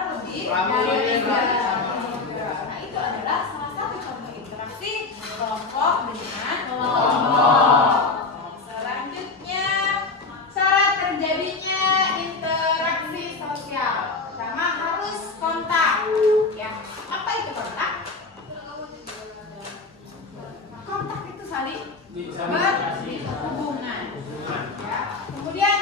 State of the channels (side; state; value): right; quieter; 3.9 dB